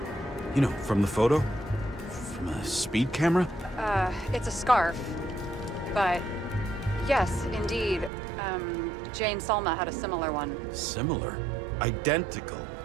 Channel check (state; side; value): drops out; left; at 8.1 s